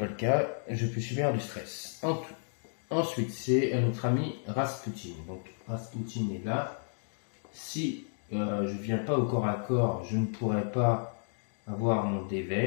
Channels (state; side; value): silent; right; digital silence